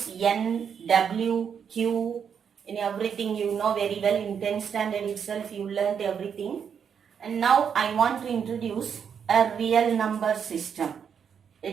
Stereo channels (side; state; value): left; quieter; 7.4 dB